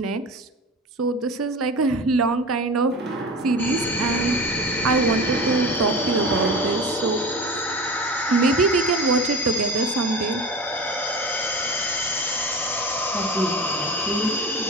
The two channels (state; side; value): normal; both; correlation 0.31